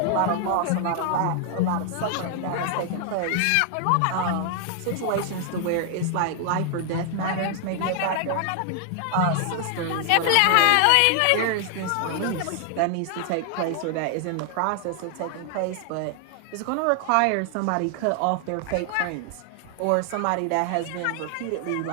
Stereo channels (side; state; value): both; different; correlation 0.00